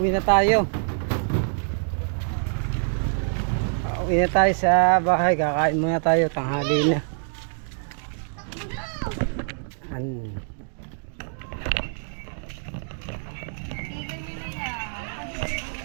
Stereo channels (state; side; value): silent; left; digital silence